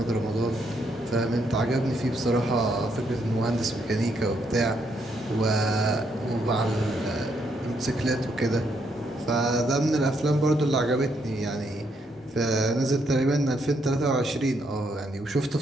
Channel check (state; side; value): normal; both; correlation 0.75